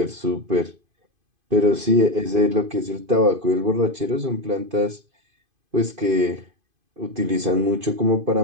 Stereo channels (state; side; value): late; left; 2.5 ms